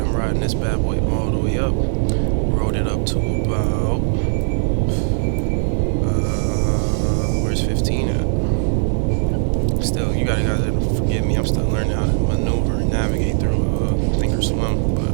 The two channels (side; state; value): left; silent; digital silence